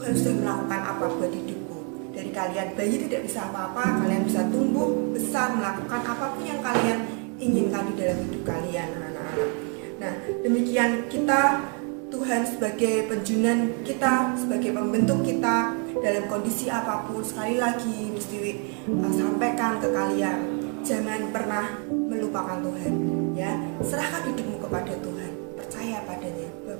sudah melakukan apa buat hidupku. Dari kalian bayi tidak bisa apa-apa, kalian bisa tumbuh besar, melakukan apapun yang kalian inginkan di dalam hidup kalian, anak-anak. Nah, demikian kita, Tuhan sebagai penjunan kita, sebagai pembentuk kita dalam kondisi apapun. Sekali lagi mesti sampaikan ke kalian, jangan pernah melupakan Tuhan, ya. Serahkan hidupmu kepada Tuhan, percaya padanya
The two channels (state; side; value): quieter; left; 38.3 dB